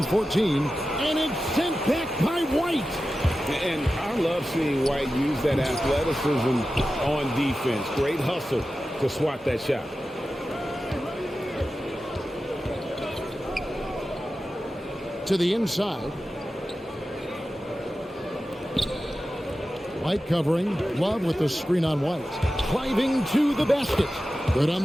14. And it's sent back by White. And I love seeing White use that athleticism on defense. Great hustle to swat that shot. To the inside. White covering. Love with the screen on White. Driving to the basket. Good on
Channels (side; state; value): both; normal; correlation 0.93